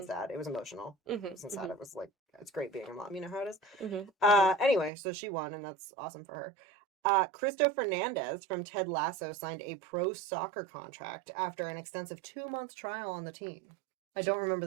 sad. It was emotional. Mm-hmm, It wasn't sad. It was like it's great being a mom. You know how it is. mm-hmm. Anyway, so she won, and that's awesome for her. Cristo Fernandez from Ted Lasso signed a pro soccer contract after an extensive 2-month trial on the team. I don't remember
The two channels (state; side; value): drops out; left; at 4.9 s